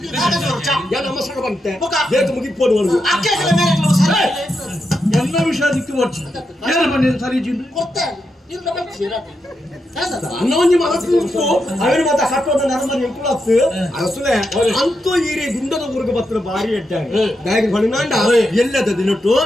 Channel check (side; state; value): both; normal; correlation 0.85